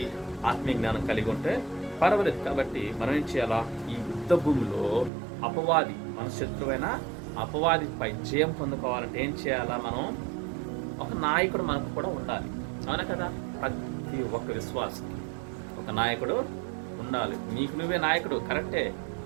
ఆత్మీయ జ్ఞానం కలిగి ఉంటే పర్వాలేదు. కాబట్టి మనం ఏం చేయాలా? ఈ యుద్ధ భూమిలో అపవాది, మన శత్రువైన అపవాదిపై జయం పొందుకోవాలంటే ఏం చేయాలా? మనం ఒక నాయకుడు మనకు కూడా ఉండాలి. అవునా కదా? ప్రతి ఒక్క విశ్వాసకి ఒక నాయకుడు ఉండాలి. నీకు నువ్వే నాయకుడు కరెక్టే,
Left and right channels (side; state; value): left; drops out; at 5.1 s